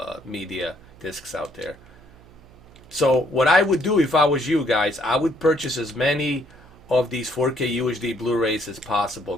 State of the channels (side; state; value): right; noise; hum, 24 dB below the sound